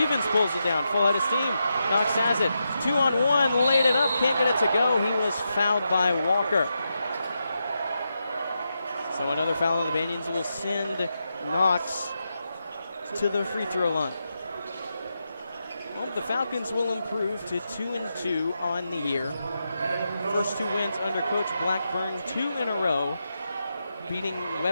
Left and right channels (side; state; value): both; inverted; correlation -0.86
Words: pulls it down, full head of steam. Knox has it. 2-on-1, laid it up, can't get it to go. He was fouled by Walker. So another foul on the Banyans will send Knox to the free throw line. Well, the Falcons will improve to 2-2 on the year. First two wins under Coach Blackburn, 2 in a row, beating